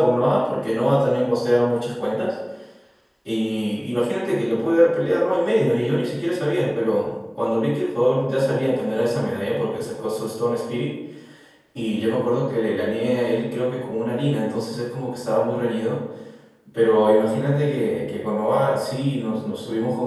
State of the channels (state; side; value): identical; both; correlation 1.00